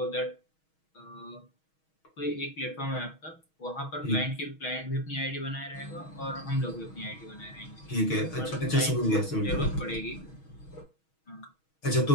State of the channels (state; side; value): late; right; 6.3 ms